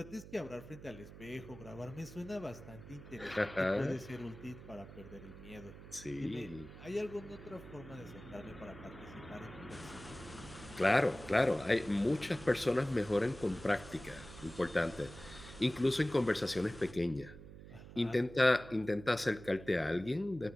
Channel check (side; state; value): right; noise; hum, 15 dB below the sound